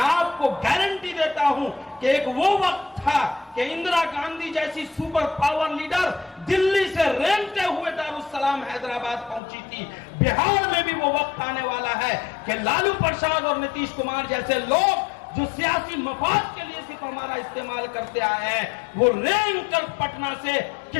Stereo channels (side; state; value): right; drops out; at 9.4 s